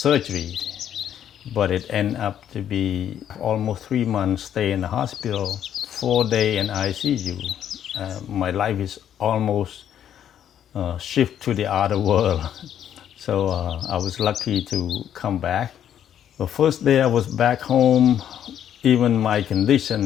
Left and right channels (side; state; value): right; quieter; 10.0 dB